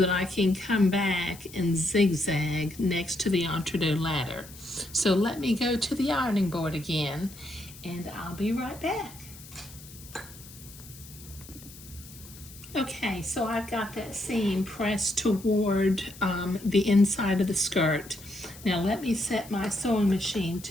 I can come back and zigzag next to the entre-deux ladder. So let me go to the ironing board again and I'll be right back. Okay, so I've got that seam pressed toward the inside of the skirt. Now let me set my sewing machine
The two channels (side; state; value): left; noise; hiss, 18 dB below the sound